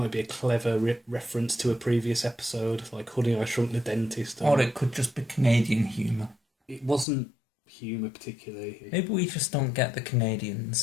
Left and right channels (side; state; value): right; drops out; at 7.1 s